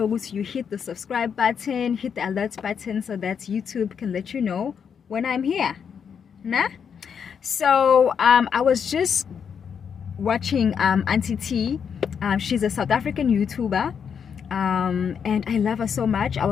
you hit the subscribe button, hit the alert button so that YouTube can let you know when I'm here. Nah? So I was just watching Auntie T. She's a South African YouTuber, and I love her so much. I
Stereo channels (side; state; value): right; quieter; 7.2 dB